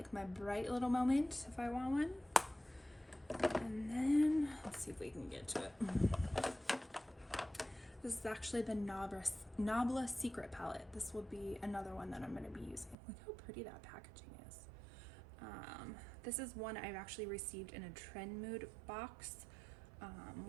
my bright little moment if I want one. And then let's see if we can get to it. This is actually the Nabla Secret palette. This will be another one that I'm going to be using. Look how pretty that packaging is. This is one I've actually received in a Trend Mood box,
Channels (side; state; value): left; drops out; at 13.0 s